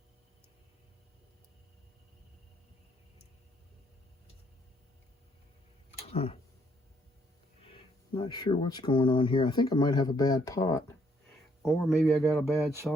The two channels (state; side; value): normal; both; correlation 0.69